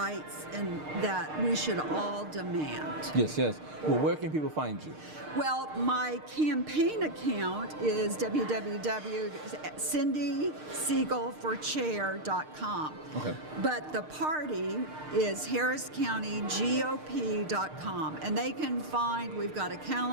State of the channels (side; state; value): left; late; 6.6 ms